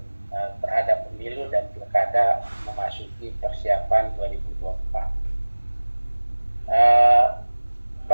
terhadap pemilu dan pilkada memasuki persiapan 2024.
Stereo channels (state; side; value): inverted; both; correlation -1.00